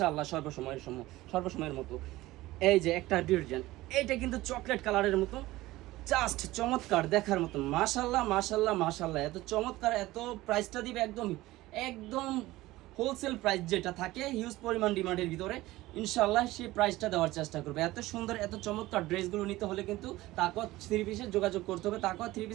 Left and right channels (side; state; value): left; quieter; 17.9 dB